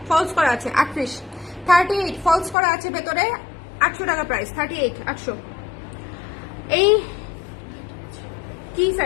ফলস করা আছে 38। 38 ফলস করা আছে ভেতরে। 800 টাকা প্রাইস। 38 800। এই কি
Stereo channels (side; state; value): right; drops out; at 2.6 s